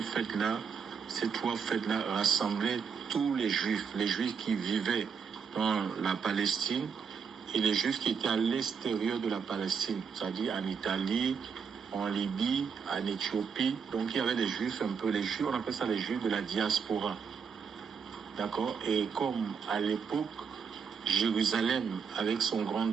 fêtes-là, ces 3 fêtes-là rassemblaient tous les Juifs qui vivaient dans la Palestine et les Juifs qui étaient à l'extérieur de la Palestine, c'est-à-dire en Italie, en Libye, en Éthiopie. Donc il y avait des Juifs un peu, les Juifs, on appelle ça les Juifs de la diaspora. D'accord? Et comme à l'époque, Jérusalem, avec son grand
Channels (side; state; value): left; quieter; 6.3 dB